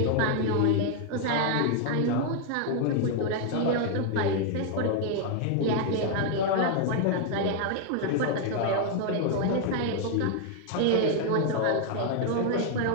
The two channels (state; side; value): different; both; correlation 0.01